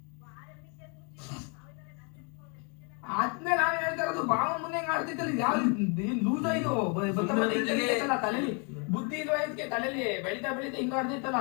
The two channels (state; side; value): quieter; right; 35.6 dB